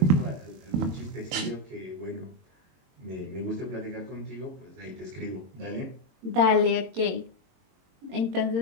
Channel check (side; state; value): left; late; 22 ms